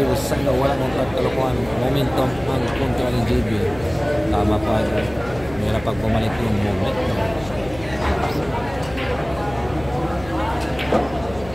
na wala mong pagkalukuhan. Momentum ang kontra ng JB. Tama pa idol. Mayroon pag bumalik yung moment.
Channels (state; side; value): noise; left; hum, 16 dB below the sound